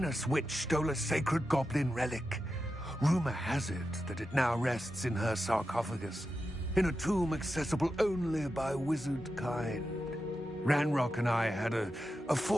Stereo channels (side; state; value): both; normal; correlation 0.90